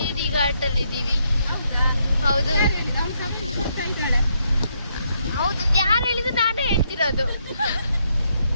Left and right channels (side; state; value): both; inverted; correlation -0.76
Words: ಘಾಟ್ ಅಲ್ಲಿ ಇದ್ದೀವಿ. ಹೌದು ಹೌದು, ಯಾರು ಹೇಳಿದ್ರು ನಾನೇ ಹೇಳ್ತಿರೋದು.